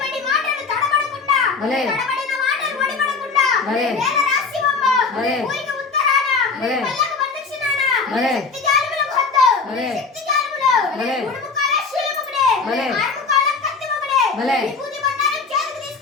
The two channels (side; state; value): right; quieter; 4.6 dB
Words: మాటలు తడబడకుండా భలే తడబడిన మాటలు వడిబడకుండా భలే వేల రాశివమ్మ భలే ఊరికి ఉత్తరాన భలే పల్లకు ప్రదక్షిణాన భలే శక్తి జాలములకు హద్దు భలే శక్తి జాలములు భలే ఉడుముకాల శూలముకుడే భలే ఆరుముకాల కత్తిముకుడే భలే విభూతి బండారం చేతికి